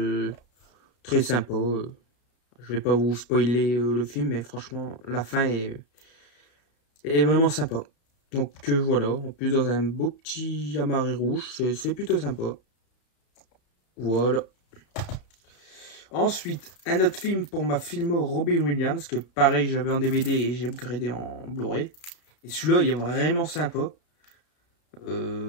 très sympa. Je vais pas vous spoiler le film, mais franchement, la fin est vraiment sympa. Donc voilà, en plus dans un beau petit amarré rouge, c'est plutôt sympa. Voilà. Ensuite, un autre film pour ma filmo Robin Williams, que pareil j'avais en DVD et j'ai upgradé en Blu-ray. Et celui-là, il est vraiment sympa.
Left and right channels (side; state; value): right; late; 33 ms